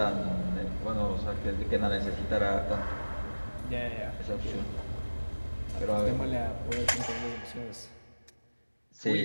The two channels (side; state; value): both; inverted; correlation -1.00